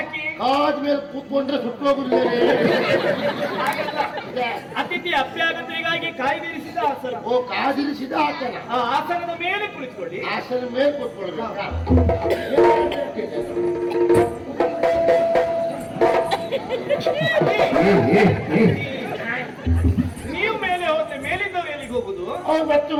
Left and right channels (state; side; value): identical; both; correlation 1.00